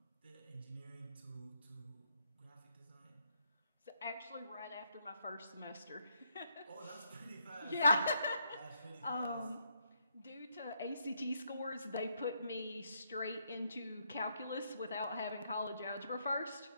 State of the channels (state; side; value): inverted; both; correlation -0.75